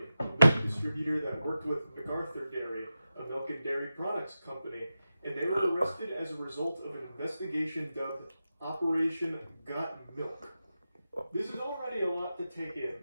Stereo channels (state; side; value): inverted; both; correlation -0.91